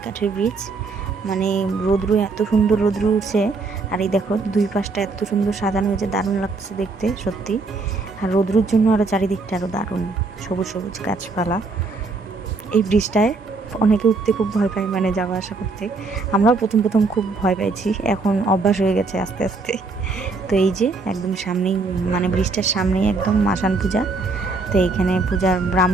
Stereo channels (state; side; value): quieter; left; 3.8 dB